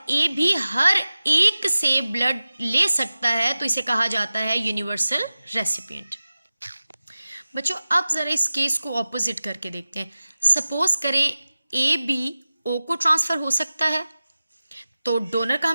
ए भी हर एक से ब्लड ले सकता है, तो इसे कहा जाता है यूनिवर्सल रेसिपिएंट। बच्चों अब ज़रा इस केस को ऑपोजिट करके देखते हैं। सपोज करें ए बी ओ को ट्रांसफ़र हो सकता है। तो डोनर का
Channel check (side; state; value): both; inverted; correlation -0.96